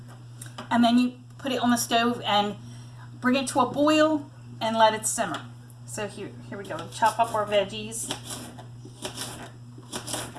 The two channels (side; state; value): both; identical; correlation 1.00